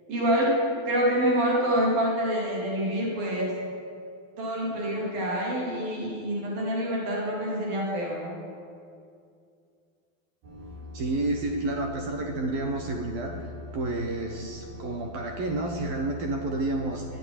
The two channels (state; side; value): late; left; 12 ms